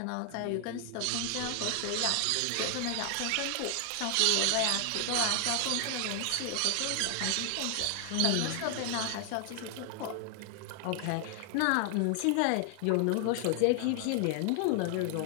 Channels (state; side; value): different; both; correlation 0.00